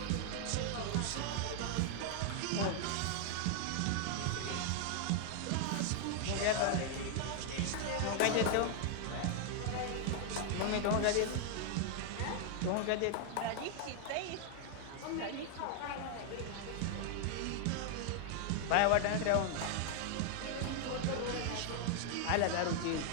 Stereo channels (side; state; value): both; different; correlation 0.00